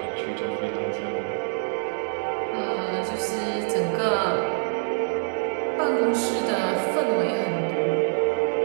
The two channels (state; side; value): silent; left; digital silence